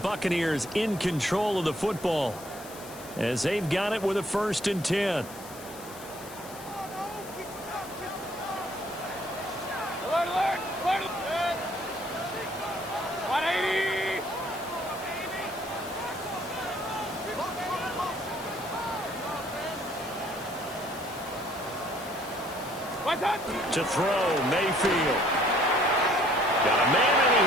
in control of the football as they've got it with a 1st and 10. To throw, Mayfield. Got a man, and he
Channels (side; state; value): left; noise; hiss, 16 dB below the sound